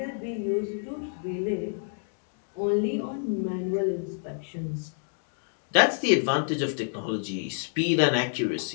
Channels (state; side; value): silent; right; digital silence